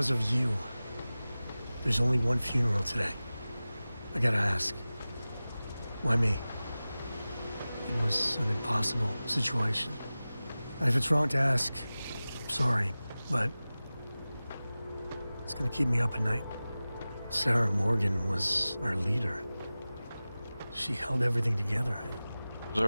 of you, there's only one funeral today. I gotta ask, why me? It was an impossible situation. And if it's wrong to ask, sorry, but it's gonna keep me up at night. Sarah Morgan was our leader. She held everything together. I was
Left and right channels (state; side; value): inverted; both; correlation -0.97